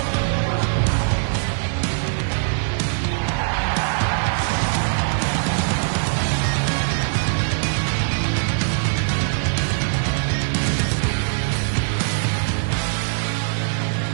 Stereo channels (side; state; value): left; silent; digital silence